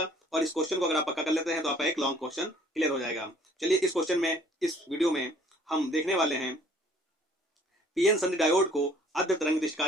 और इस क्वेश्चन को अगर आप पक्का कर लेते हैं तो आपका एक लॉन्ग क्वेश्चन क्लियर हो जाएगा। चलिए, इस वीडियो में हम देखने वाले हैं पीएन संधि डायोड को अर्ध तरंग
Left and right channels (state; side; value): normal; both; correlation 0.57